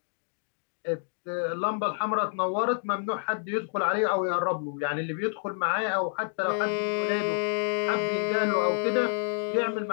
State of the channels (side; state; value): right; silent; digital silence